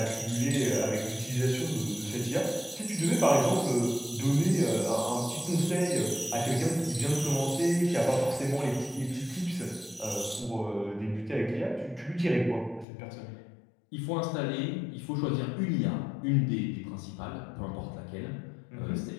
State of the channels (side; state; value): right; drops out; at 12.9 s